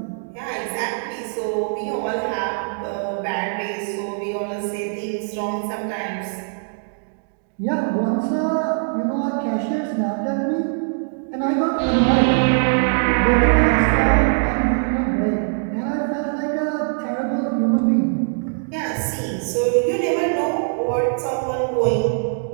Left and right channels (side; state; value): left; silent; digital silence